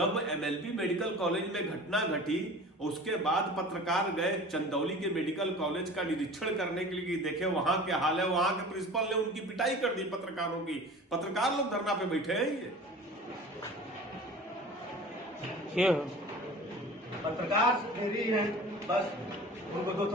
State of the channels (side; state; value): both; normal; correlation 0.40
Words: एमएलबी मेडिकल कॉलेज में घटना घटी, उसके बाद पत्रकार गए चंदौली के मेडिकल कॉलेज का निरीक्षण करने के लिए, देखे वहां क्या हाल है। वहां के प्रिंसिपल ने उनकी पिटाई कर दी पत्रकारों की। पत्रकार लोग धरना पे बैठे हैं। ये पत्रकार फ्री है, बस उनको 2